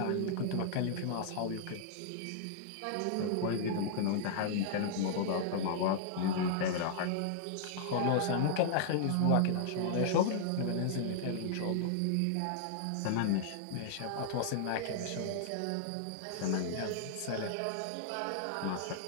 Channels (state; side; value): different; both; correlation -0.01